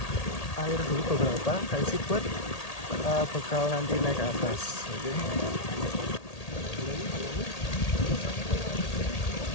air dulu beberapa, saya isi buat bekal nanti naik ke atas. Oke.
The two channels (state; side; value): late; right; 1.8 ms